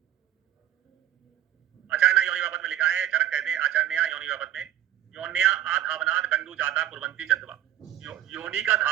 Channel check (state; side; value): quieter; left; 12.2 dB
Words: आचार्य योनि व्यापक में लिखा है, चरक कहते हैं आचार्य योनि व्यापक में, योन्या आधावनाद कंडू जाता कुर्वंती चंदवा, योनि का